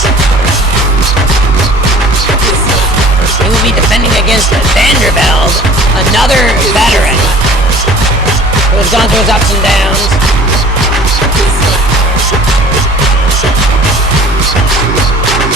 he will be defending against VanderVelde, another veteran who has gone through his ups and downs.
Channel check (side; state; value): both; normal; correlation 0.47